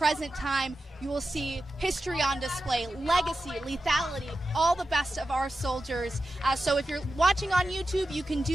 time. You will see history on display, legacy, lethality, all the best of our soldiers. So if you're watching on YouTube, you can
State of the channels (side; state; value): both; normal; correlation 0.92